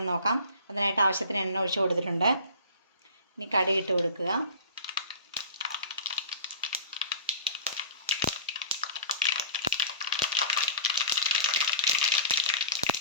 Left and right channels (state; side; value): inverted; both; correlation -0.39